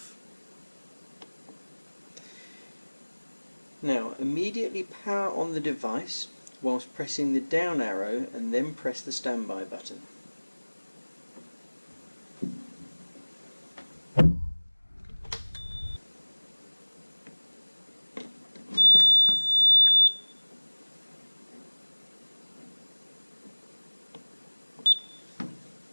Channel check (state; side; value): inverted; both; correlation -1.00